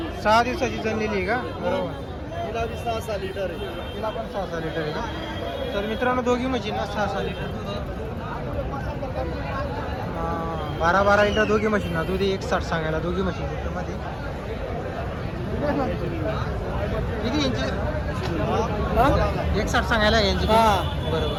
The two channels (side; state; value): both; identical; correlation 1.00